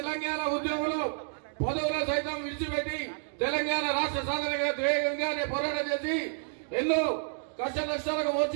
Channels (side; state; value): left; silent; digital silence